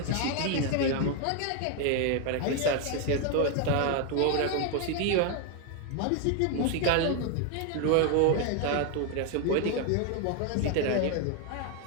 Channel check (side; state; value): both; different; correlation 0.01